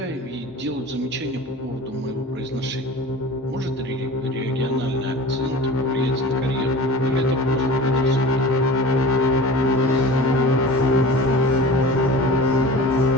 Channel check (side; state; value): both; normal; correlation 0.36